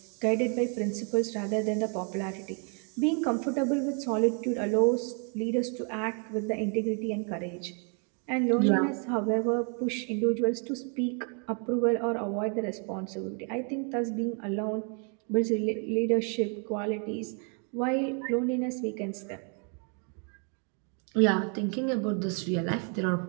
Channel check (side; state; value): left; quieter; 39.7 dB